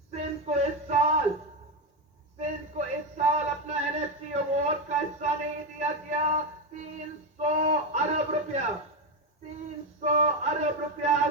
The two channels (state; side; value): normal; both; correlation 0.10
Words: سندھ کو اس سال اپنا NFT ایوارڈ کا حصہ نہیں دیا گیا۔ 300 ارب روپیہ